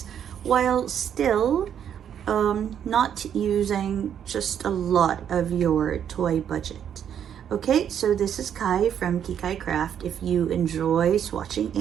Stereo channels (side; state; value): left; quieter; 9.0 dB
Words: while still not using just a lot of your toy budget. Okay, so this is Kai from Kikai Craft. If you enjoy swatching